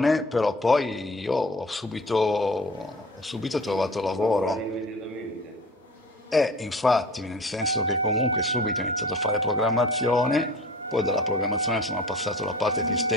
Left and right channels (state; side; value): normal; both; correlation 0.41